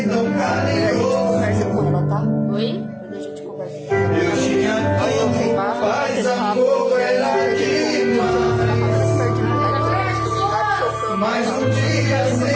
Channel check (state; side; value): identical; both; correlation 1.00